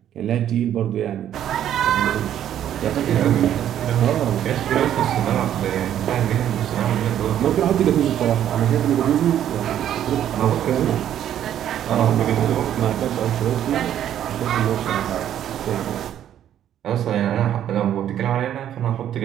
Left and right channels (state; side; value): quieter; left; 10.7 dB